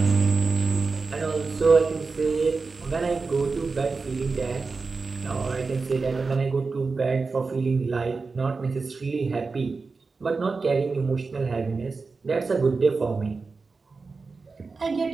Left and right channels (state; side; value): quieter; left; 4.3 dB